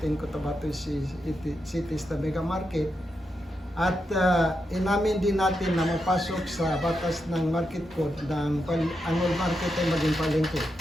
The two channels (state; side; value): normal; both; correlation 0.85